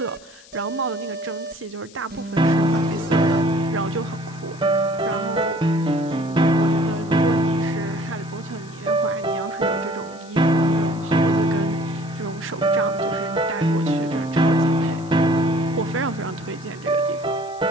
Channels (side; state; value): left; noise; hiss, 23 dB below the sound